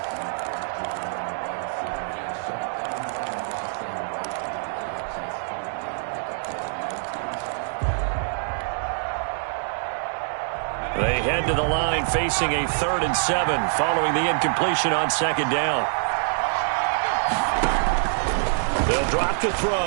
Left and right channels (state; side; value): silent; left; 62 dB below the other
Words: They head to the line facing a 3rd and 7 following the incompletion on 2nd down. They'll drop to